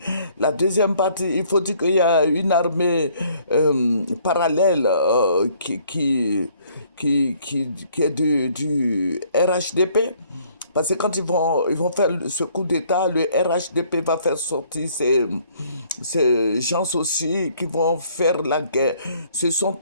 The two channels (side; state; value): both; inverted; correlation -0.62